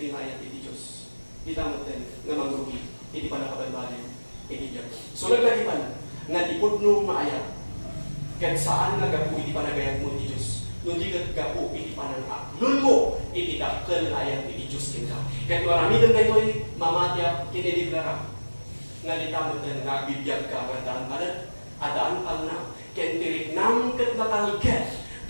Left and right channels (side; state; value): both; inverted; correlation -1.00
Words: yung ayat iti Diyos. Ita mo din, na mangrugi, iti pa nakabalbalin, iti Diyos. So naglagi pa na, nga tipod no maayat, kahit saan nagapu, iti pa nagayat mo iti Diyos. Nung di gapu, iti pa nang aklon mo, iti dakkel ayat iti Diyos kinta. Kahit marami din kayo'y mamatya, kinideklara, nga di tamo din, nagbibiyag ka, kadaan adaan pang na, kahit tirik nang kat nakalget,